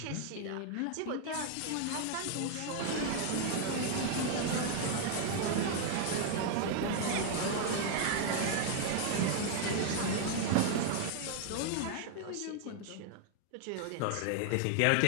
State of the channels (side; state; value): both; different; correlation 0.00